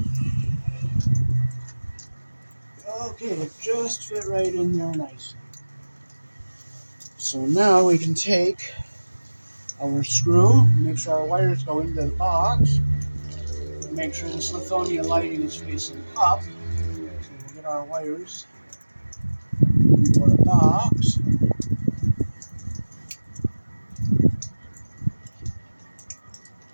Okay, it just fit right in there nicely. So now we can take our screw, make sure our wires go into the box, make sure this Lithonia lighting is facing up. So we'll get our wires into our box.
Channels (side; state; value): both; inverted; correlation -1.00